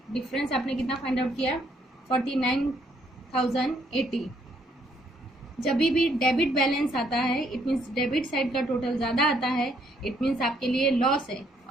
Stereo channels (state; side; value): normal; both; correlation 0.69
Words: डिफरेंस आपने कितना फाइंड आउट किया, 49,080। जब भी डेबिट बैलेंस आता है इट मीन्स डेबिट साइड का टोटल ज़्यादा आता है, इट मीन्स आपके लिए लॉस है,